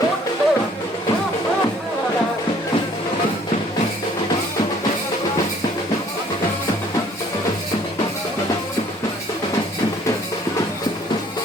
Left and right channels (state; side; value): normal; both; correlation 0.58